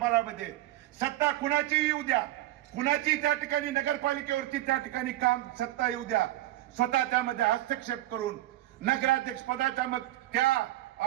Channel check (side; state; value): left; quieter; 15.6 dB